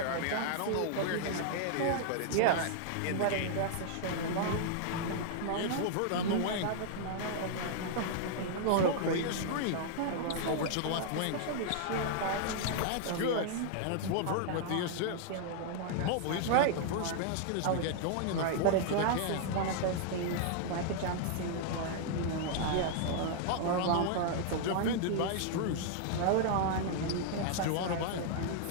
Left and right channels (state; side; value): different; both; correlation -0.01